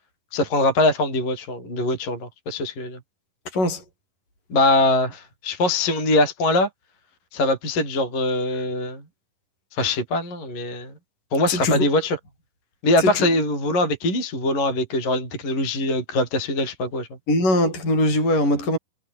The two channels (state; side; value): late; right; 11 ms